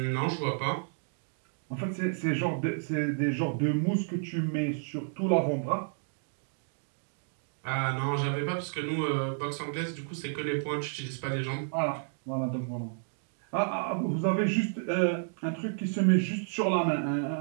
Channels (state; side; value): silent; left; digital silence